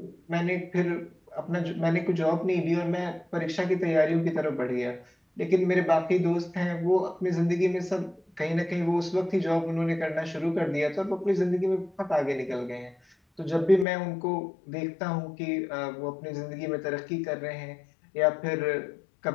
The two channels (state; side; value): drops out; right; at 13.9 s